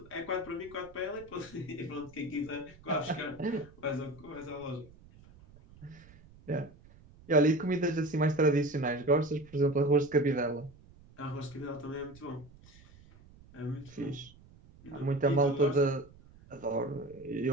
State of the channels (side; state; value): right; noise; rumble, 23 dB below the sound